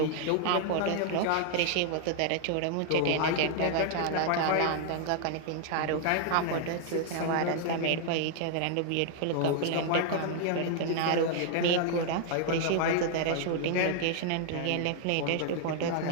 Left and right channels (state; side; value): different; both; correlation 0.00